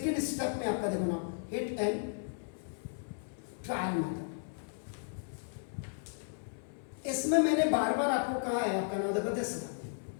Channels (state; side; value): silent; right; 55 dB below the other